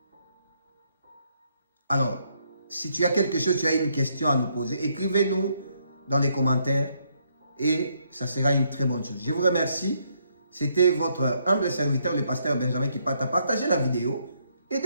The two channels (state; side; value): inverted; both; correlation -0.74